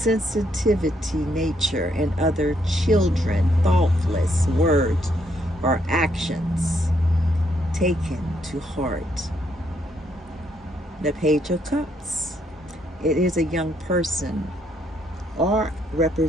nature and other children, thoughtless words or actions taken to heart. The Page of Cups. It is a young person or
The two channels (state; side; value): normal; both; correlation 0.73